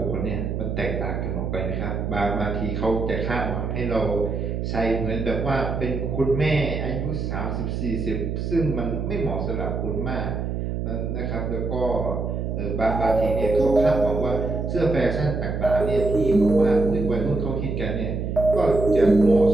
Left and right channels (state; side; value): noise; right; hum, 3 dB below the sound